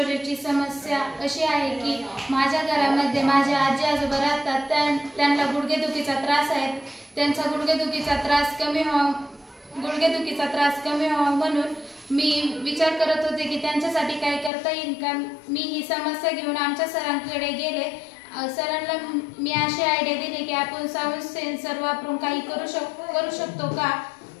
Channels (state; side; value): drops out; right; at 14.5 s